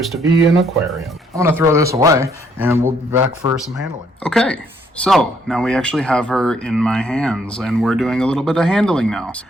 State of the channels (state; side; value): normal; both; correlation 0.68